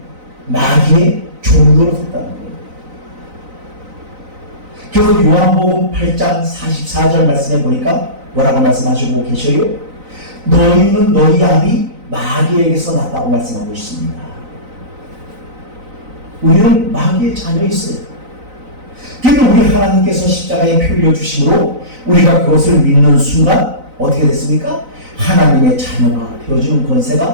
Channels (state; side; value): late; left; 4.0 ms